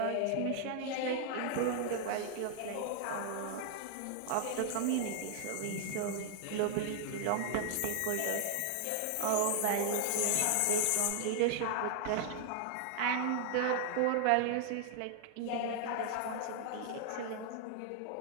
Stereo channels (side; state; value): both; different; correlation 0.00